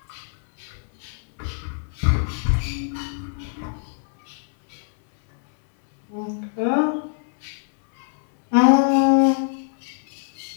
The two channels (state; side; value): silent; right; 63 dB below the other